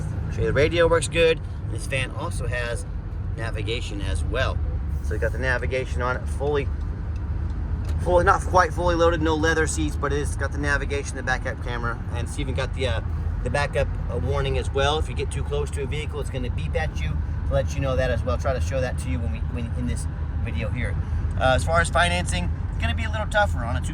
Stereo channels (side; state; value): both; identical; correlation 1.00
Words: show you the radio works good. This van also has navigation as well. So you got the navigation on it, fully, not quite fully loaded, no leather seats, but it's got the navigation, the backup camera, and it's even got the backup warning as well. If you get too close to a vehicle, it's going to beep at you to let you know that as well. I'll try to show that to you when in this video here. As far as financing, it's going to be a little tougher on a